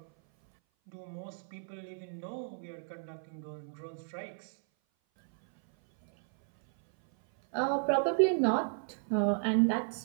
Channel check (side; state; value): left; silent; 56 dB below the other